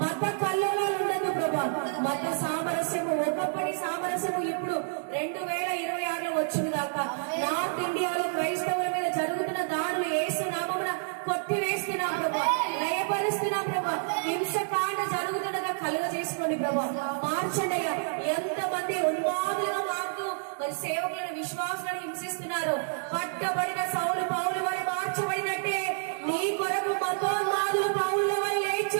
మత కల్లోలాలు ఉండదు ప్రభా. మత సామరస్యము, ఒకప్పటి సామరస్యము ఇప్పుడు 2026లో వచ్చింది దాకా నార్త్ ఇండియాలో క్రైస్తవుల మీద జరుగుతున్న దాడులు యేసు నామమున కొట్టివేస్తున్నాం ప్రభా, లయపరుస్తున్నాం ప్రభా. హింసకాండ జరుగుతుండగా కలుగ చేసుకోండి ప్రభా, మార్చండి అయ్యా. ఎంతమంది ఉన్మాదులుగా మారుతూ మరి సేవకులను విశ్వాసులను హింసిస్తున్నారు. పట్టబడిన సౌలు పౌలు వారి మార్చబడినట్టే నీ కొరకు మతోన్మాదులు పౌల వారి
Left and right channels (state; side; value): silent; left; digital silence